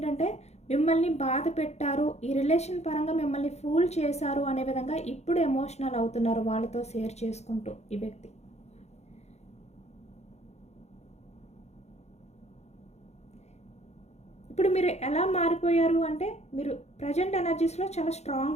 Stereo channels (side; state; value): right; late; 0.32 ms